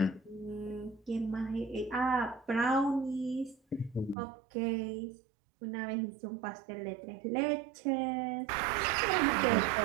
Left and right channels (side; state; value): left; drops out; at 4.2 s